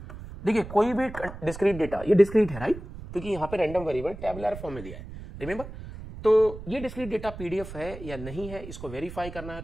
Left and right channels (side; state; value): right; noise; rumble, 12 dB below the sound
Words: देखिए कोई भी डिस्क्रीट डेटा, ये डिस्क्रीट है, राइट, क्योंकि यहाँ पे रैंडम वेरिएबल टेबुलर फॉर्म में दिया है, रिमेंबर। तो ये डिस्क्रीट डेटा पीडीएफ है या नहीं है इसको वेरीफाई करना है